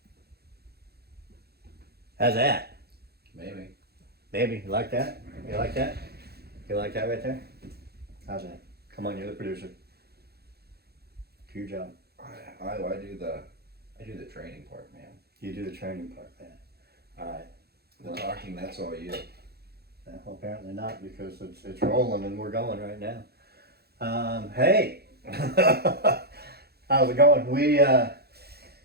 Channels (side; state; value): left; late; 0.46 ms